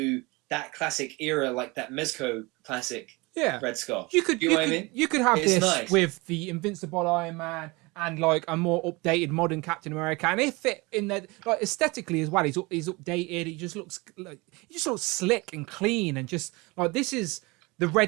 that classic era, like that Mezco classic Red Skull. You could have this with the Invincible Iron Man and like a more updated modern Captain America, and if it in there like aesthetically as well, he's updated. He just looks slick and clean, and just like this is the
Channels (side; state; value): left; quieter; 24.9 dB